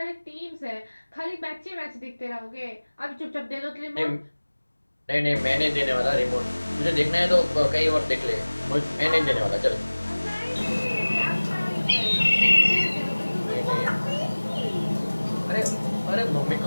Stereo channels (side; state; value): both; inverted; correlation -1.00